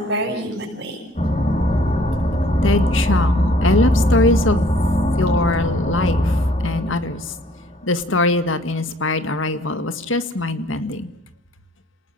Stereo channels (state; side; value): normal; both; correlation 0.57